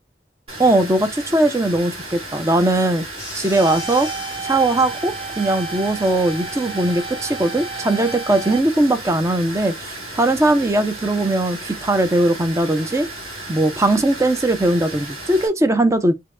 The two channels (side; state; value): both; normal; correlation 0.69